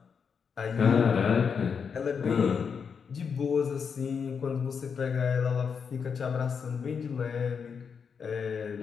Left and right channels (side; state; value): right; quieter; 6.3 dB